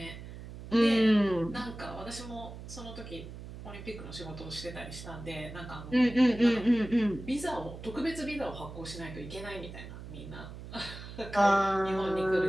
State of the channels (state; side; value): noise; right; hum, 12 dB below the sound